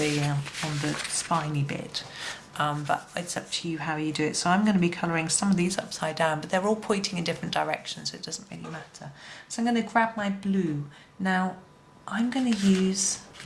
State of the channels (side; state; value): both; identical; correlation 1.00